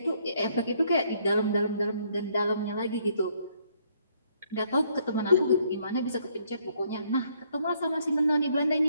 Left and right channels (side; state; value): both; inverted; correlation -0.68